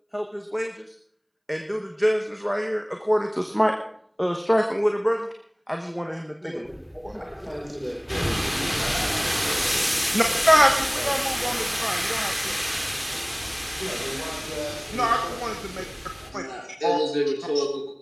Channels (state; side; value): identical; both; correlation 1.00